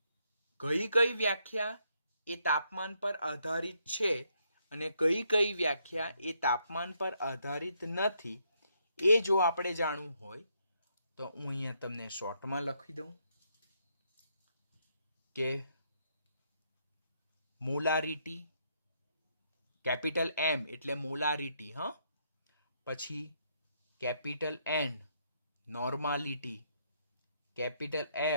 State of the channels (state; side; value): inverted; both; correlation -0.74